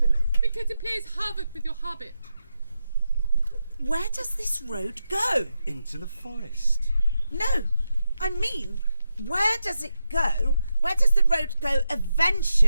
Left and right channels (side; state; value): both; inverted; correlation -0.87